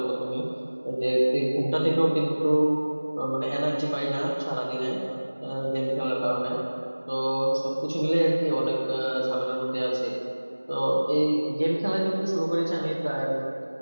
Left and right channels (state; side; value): inverted; both; correlation -1.00